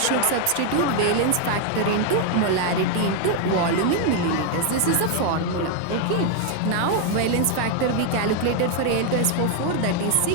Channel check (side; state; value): both; different; correlation 0.01